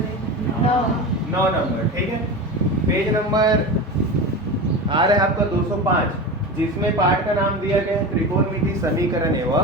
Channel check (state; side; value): normal; both; correlation 0.27